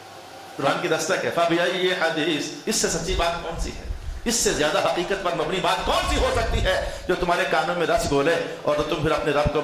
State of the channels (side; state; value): both; identical; correlation 1.00